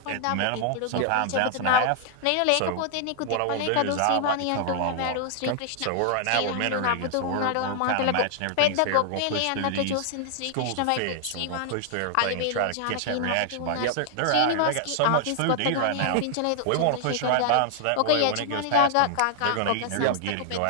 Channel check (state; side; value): different; both; correlation -0.01